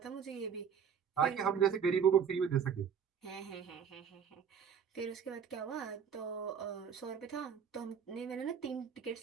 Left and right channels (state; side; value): quieter; left; 7.4 dB